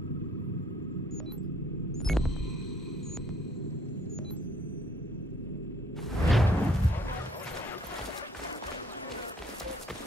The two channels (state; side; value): normal; both; correlation 0.63